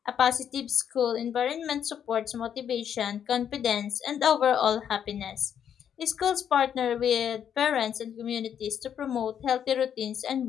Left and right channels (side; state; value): right; quieter; 8.8 dB